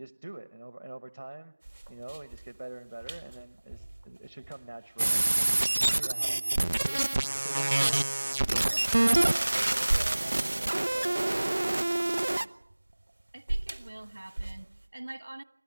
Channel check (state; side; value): inverted; both; correlation -1.00